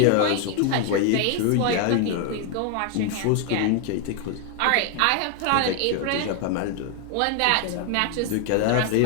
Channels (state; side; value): different; both; correlation 0.01